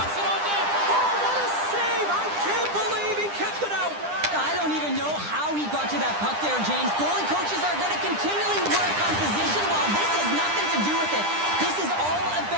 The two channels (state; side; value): late; left; 9.9 ms